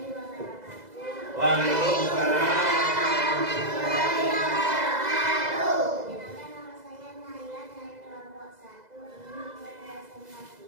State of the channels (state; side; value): late; left; 2.0 ms